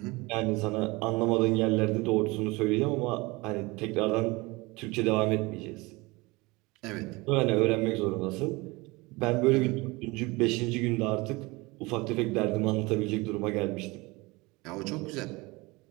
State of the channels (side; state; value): left; quieter; 23.8 dB